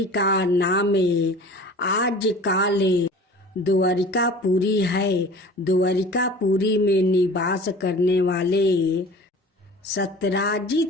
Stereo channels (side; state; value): both; normal; correlation 0.42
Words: का नाम आजकल द्वारिकापुरी है। द्वारिकापुरी में निवास करने वाले